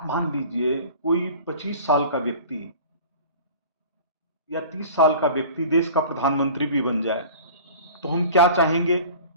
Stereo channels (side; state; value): both; inverted; correlation -0.42